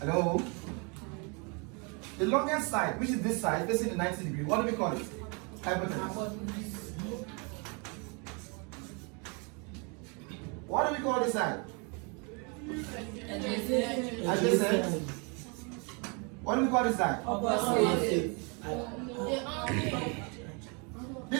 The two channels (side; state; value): left; quieter; 33.5 dB